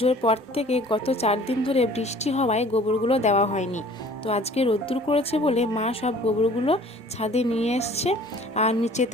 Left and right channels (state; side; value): normal; both; correlation 0.50